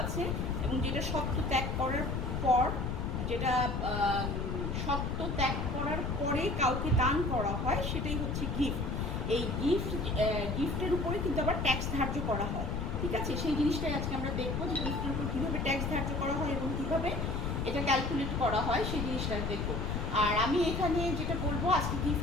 আছে এবং যেটা সত্ত্ব ত্যাগ করার পর, পরে কাউকে দান করা হয়, সেটাই হচ্ছে গিফট। এই গিফটের উপরে কিন্তু আবার ট্যাক্স ধার্য করা হয়। ঠিক আছে, সেই জিনিসটাই আজকে আমরা দেখবো যে গিফটের উপর কীভাবে ট্যাক্স ধার্য করা হয় এবং কীভাবে এটা ক্যালকুলেট করা হয়, সেই জিনিসটা দেখবো। আর আমি এখানে যেটা বলবো, আজকে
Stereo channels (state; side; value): noise; left; rumble, 1 dB below the sound